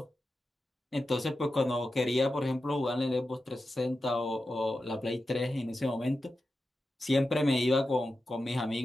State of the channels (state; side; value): normal; both; correlation 0.91